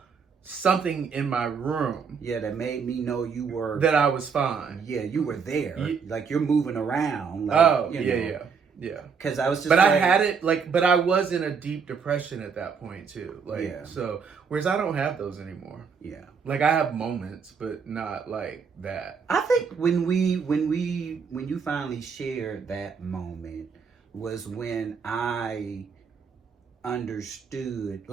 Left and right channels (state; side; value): quieter; left; 5.9 dB